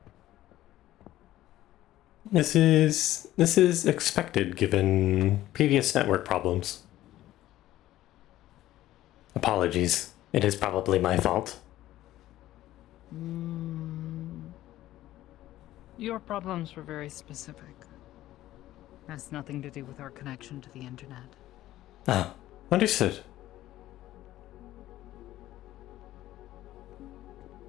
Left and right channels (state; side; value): quieter; right; 14.6 dB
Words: This is expected given previous network problems. Apologies. It is probably my fault. Your problems were very specific. Has nothing to do with our connection to the internet. Ah, understood.